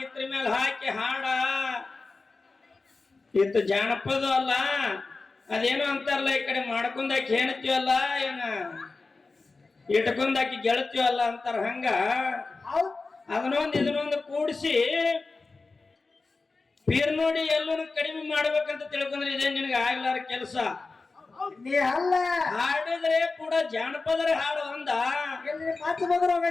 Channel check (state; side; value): quieter; right; 3.8 dB